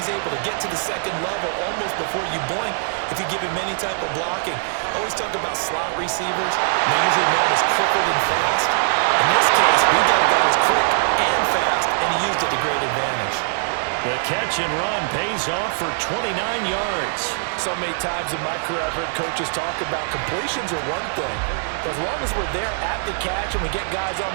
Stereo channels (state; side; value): silent; left; digital silence